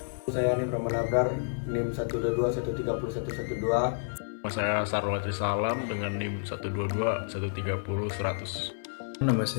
Saya Nim Ramanabrar, NIM 122130112. Saya Sarwati Salam dengan NIM 122130100. Nama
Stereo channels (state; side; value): silent; right; 58 dB below the other